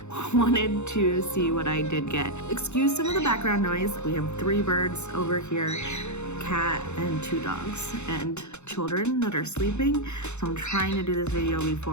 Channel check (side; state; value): right; late; 0.82 ms